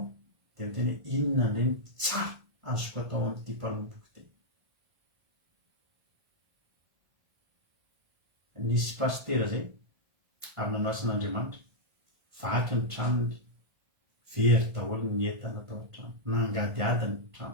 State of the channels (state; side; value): late; left; 1.5 ms